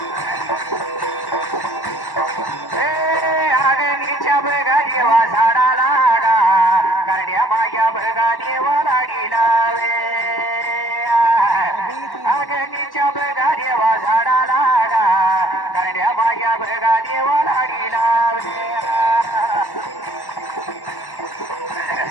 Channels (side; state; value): right; late; 1.1 ms